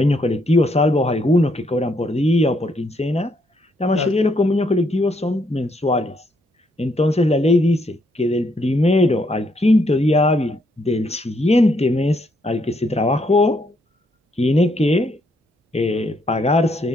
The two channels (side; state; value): both; normal; correlation 0.73